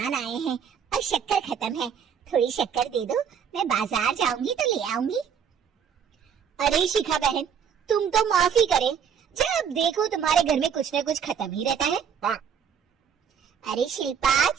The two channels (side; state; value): left; quieter; 7.5 dB